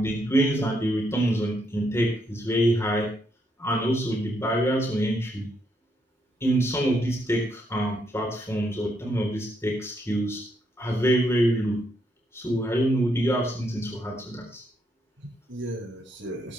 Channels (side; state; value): both; normal; correlation 0.76